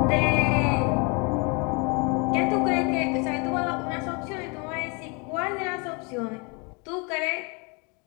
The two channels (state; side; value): quieter; right; 31.7 dB